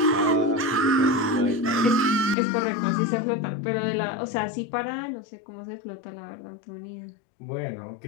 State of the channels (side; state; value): right; drops out; at 2.4 s